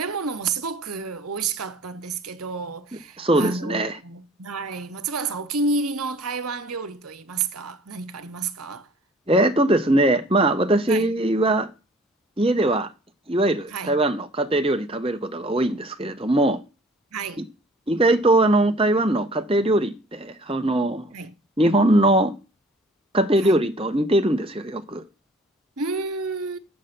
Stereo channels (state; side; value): normal; both; correlation 0.52